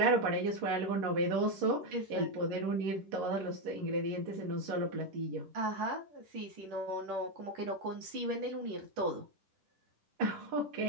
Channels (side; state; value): left; late; 10 ms